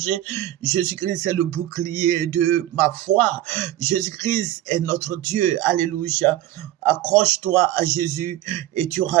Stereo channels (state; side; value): quieter; left; 14.1 dB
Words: Jésus-Christ est le bouclier de ma foi. Jésus-Christ est notre Dieu. Alléluia. Accroche-toi à Jésus et tu